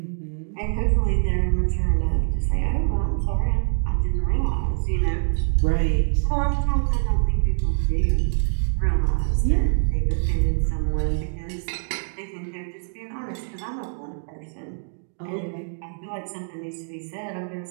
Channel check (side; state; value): left; silent; digital silence